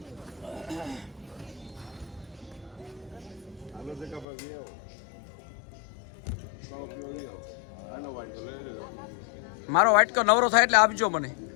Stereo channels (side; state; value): right; drops out; at 4.2 s